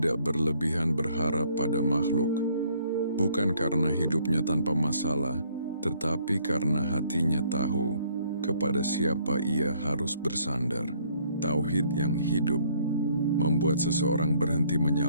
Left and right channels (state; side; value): inverted; both; correlation -0.64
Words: berlebihan berharap pada makhluk, bukan karena hidupnya tanpa masalah, tetapi karena hatinya tahu kepada siapa ia harus bersandar. Tauhid yang hidup membuat seseorang berhenti